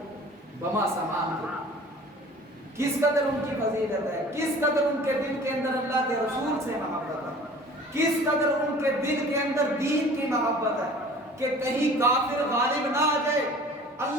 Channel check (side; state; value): both; normal; correlation 0.46